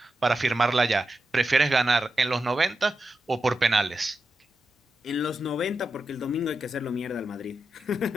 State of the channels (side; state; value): both; normal; correlation 0.89